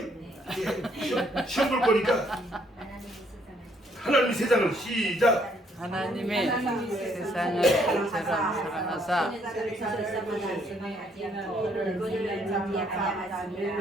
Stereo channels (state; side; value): normal; both; correlation 0.68